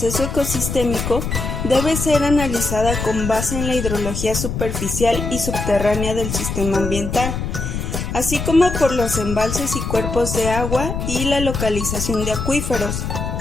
ecosistémico, debe ser analizada con base en la hidrología superficial y subterránea del sistema ambiental, así como por los embalses y cuerpos de agua y la localización de acuíferos.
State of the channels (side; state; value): left; noise; rumble, 4 dB below the sound